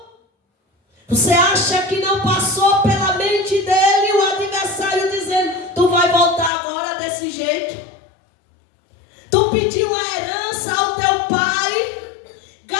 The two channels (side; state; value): right; drops out; at 6.5 s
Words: você acha que não passou pela mente dele o adversário dizendo: tu vai voltar agora desse jeito? Tu pediu a herança ao teu pai,